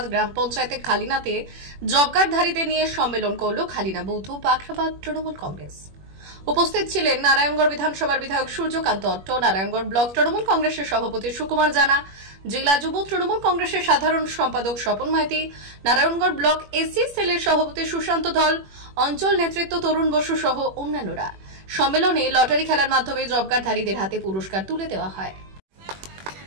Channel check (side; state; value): left; late; 21 ms